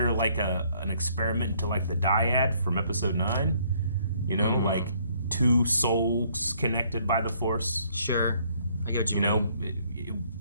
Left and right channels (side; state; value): both; inverted; correlation -0.65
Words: an experiment into the dyad from episode 9? Two souls connected by the Force. Sure, I get what you mean.